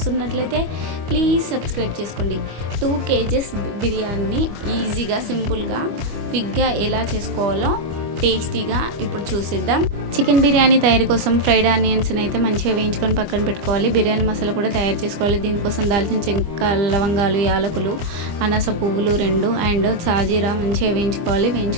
ప్లీజ్ సబ్స్క్రైబ్ చేసుకోండి. 2 kgs బిర్యానీ ఈజీగా సింపుల్గా క్విక్గా ఎలా చేసుకోవాలో టేస్టీగా ఇప్పుడు చూసిద్దాం. చికెన్ బిర్యానీ తయారీ కోసం ఫ్రైడ్ ఆనియన్స్ని అయితే మంచిగా వేయించుకొని పక్కన పెట్టుకోవాలి. బిర్యానీ మసాలా కూడా తయారు చేసుకోవాలి. దీనికోసం దాల్చిన చెక్క, లవంగాలు, యాలకులు, అనాస పువ్వులు 2 అండ్ సాజీరా మంచిగా వేయించుకోవాలి.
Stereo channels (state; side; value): late; left; 25 ms